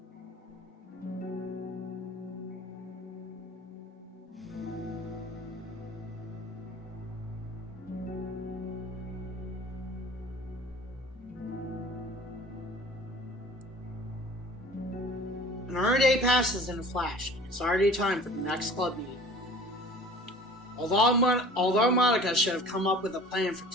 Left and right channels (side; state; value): both; normal; correlation 0.45